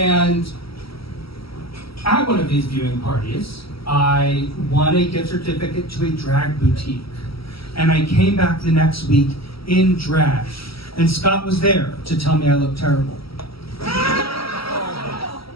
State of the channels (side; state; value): right; late; 0.75 ms